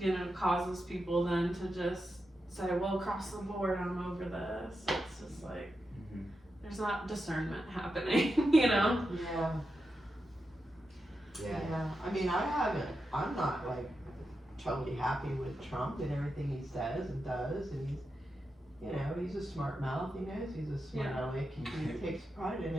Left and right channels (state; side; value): normal; both; correlation 0.88